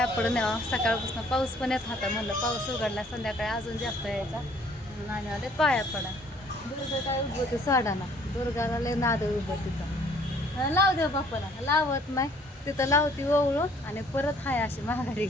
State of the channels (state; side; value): normal; both; correlation 0.59